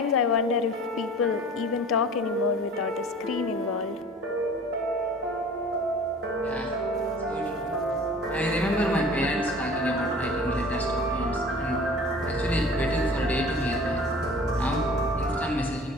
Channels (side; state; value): both; normal; correlation 0.44